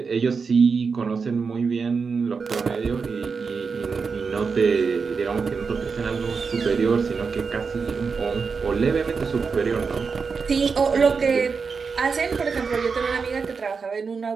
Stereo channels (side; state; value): left; quieter; 5.2 dB